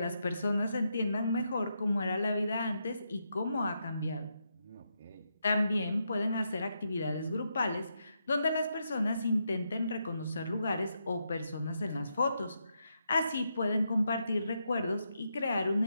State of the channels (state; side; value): inverted; both; correlation -0.82